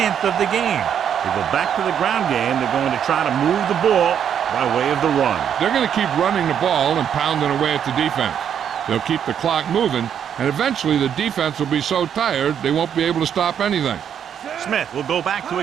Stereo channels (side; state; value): left; quieter; 8.7 dB